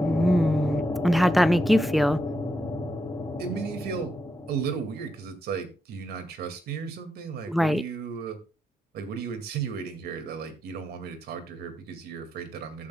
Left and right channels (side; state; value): both; normal; correlation 0.84